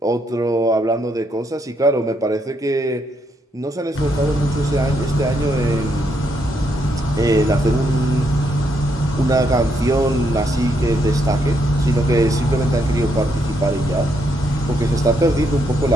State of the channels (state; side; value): normal; both; correlation 0.76